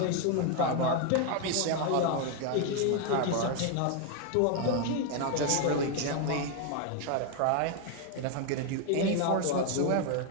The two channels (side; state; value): both; different; correlation 0.01